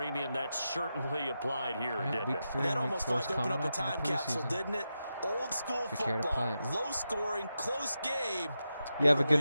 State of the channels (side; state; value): both; inverted; correlation -0.89